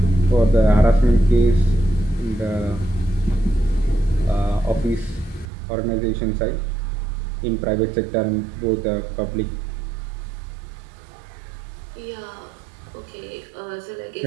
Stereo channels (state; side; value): drops out; left; at 5.5 s